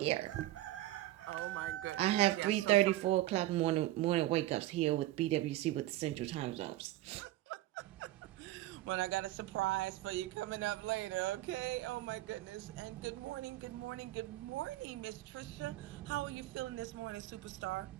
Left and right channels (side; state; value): left; quieter; 15.9 dB